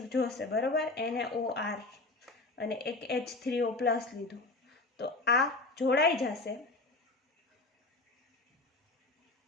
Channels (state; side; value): quieter; right; 3.1 dB